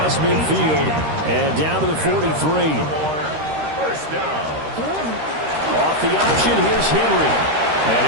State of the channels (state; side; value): late; left; 13 ms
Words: midfield and down to the 43. Off the option, here's Henry. And